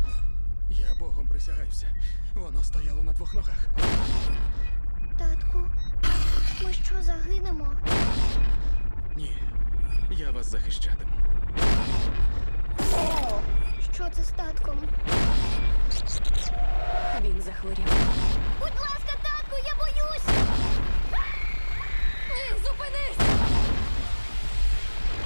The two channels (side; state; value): both; inverted; correlation -1.00